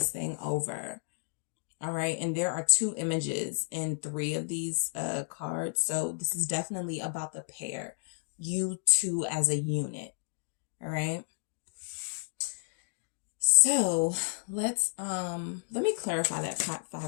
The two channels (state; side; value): silent; right; digital silence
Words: thing over. All right. And there are 2 images in 3 of these cards. So this is definitely about the pair, you two as a unit. All right. So let me clarify that